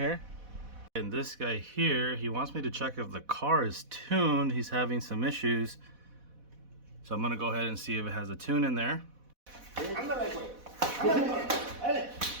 And this guy here, he wants me to check if the car is tuned. He's having some issues, so I'm gonna go ahead and see if it has a tune in there.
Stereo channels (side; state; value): left; late; 4.1 ms